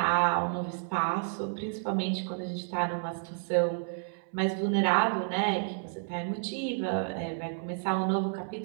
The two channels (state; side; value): silent; left; 57 dB below the other